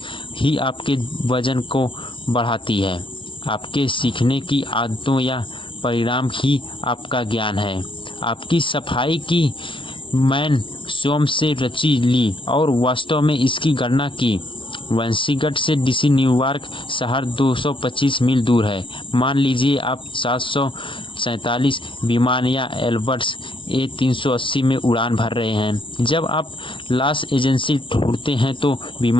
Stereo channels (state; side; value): late; right; 0.25 ms